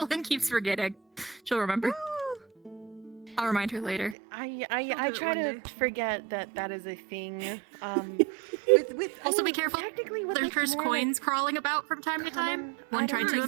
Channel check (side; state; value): left; drops out; at 4.2 s